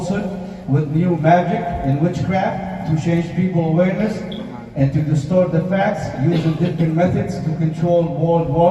with new magic and witchcraft to change people's awareness and to distort the facts using different methods to control world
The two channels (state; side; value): identical; both; correlation 1.00